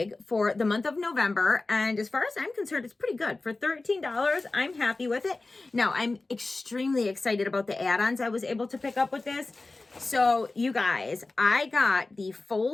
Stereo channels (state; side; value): quieter; right; 3.3 dB